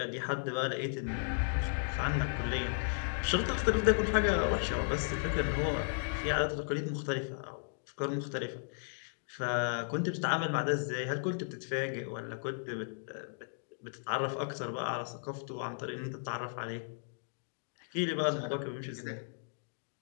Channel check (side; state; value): right; silent; digital silence